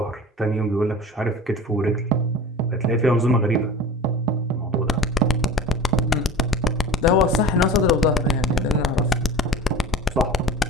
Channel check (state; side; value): normal; both; correlation 0.36